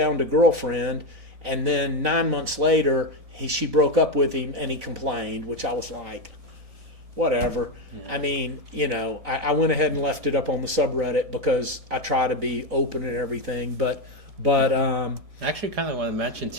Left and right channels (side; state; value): left; late; 1.7 ms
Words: a girlfriend, and then 9 months later she broke up with him and he complained, which I was like, whatever. Yeah. I mean, I went ahead and left it up on the subreddit because I try to be open and everything. But I actually kind of want to mention